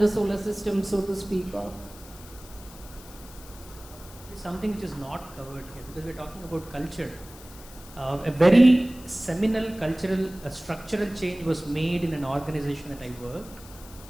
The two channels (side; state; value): left; noise; hiss, 19 dB below the sound